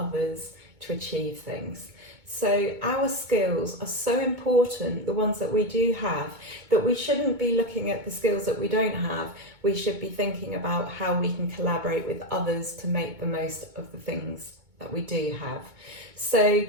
to achieve things. So our skills are so important, the ones that we do have, that we shouldn't be looking at the skills that we don't have. We should be thinking about how we can collaborate with others to make the most of the things that we do have. So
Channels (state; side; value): late; left; 2.2 ms